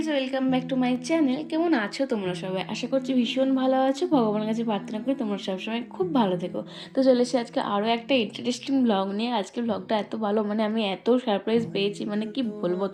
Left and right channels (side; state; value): both; identical; correlation 1.00